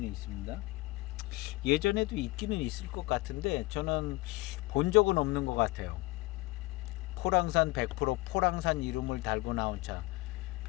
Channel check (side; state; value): right; quieter; 21.5 dB